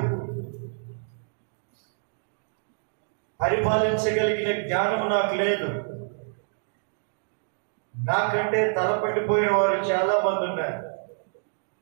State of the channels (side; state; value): left; silent; digital silence